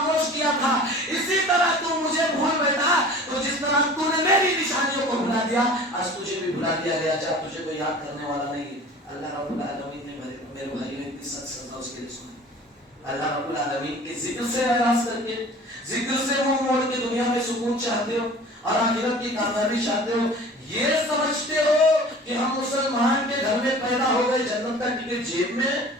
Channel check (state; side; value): normal; both; correlation 0.43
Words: کیا تھا، اسی طرح تم مجھے بھول بیٹھا، تو جس طرح تم نے میری نشانیوں کو بھلا دیا، آج تجھے بھی بھلا دیا گیا، جب تجھے کوئی یاد کرنے والا نہیں ہے۔ اللہ رب العالمین نے میرے بھائیوں کی سچ سزا اس کے لیے سنی۔ اللہ رب العالمین کے ذکر سے اعراض کر کے، ذکر سے منہ موڑ کے دنیا میں سکون چاہتے ہو اور آخرت کی کامیابی چاہتے ہو، یہ سمجھتے ہو کہ ہم مسلمان کے گھر میں پیدا ہو گئے، جنت کا ٹکٹ جیب میں،